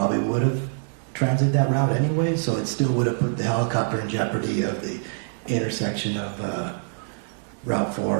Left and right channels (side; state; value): left; silent; digital silence